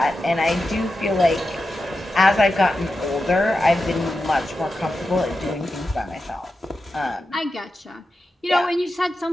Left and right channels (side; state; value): both; normal; correlation 0.90